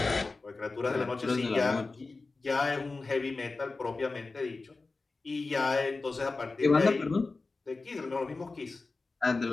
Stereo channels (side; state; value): right; quieter; 3.7 dB